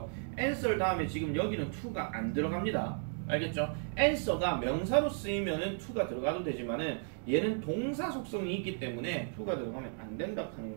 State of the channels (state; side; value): silent; left; 55 dB below the other